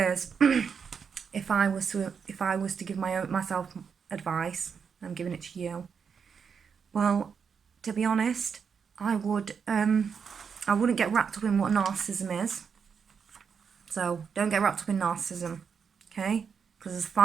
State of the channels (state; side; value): quieter; left; 6.4 dB